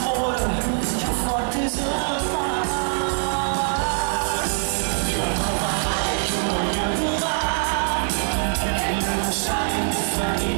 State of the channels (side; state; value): left; silent; digital silence